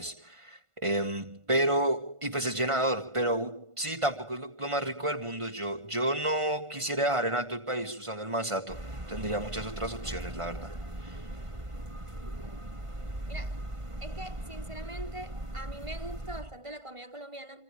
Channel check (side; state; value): left; late; 1.5 ms